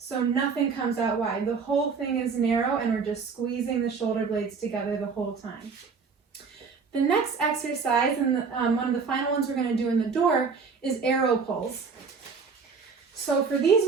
nothing comes out wide. The whole thing is narrow and we're just squeezing the shoulder blades together the whole time. The next exercise, and one of the final ones we're going to do in the door, is arrow pulls. So for these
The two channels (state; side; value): quieter; left; 5.3 dB